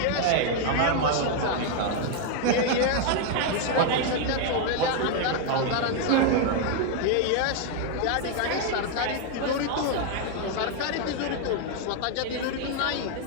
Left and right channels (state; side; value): different; both; correlation 0.01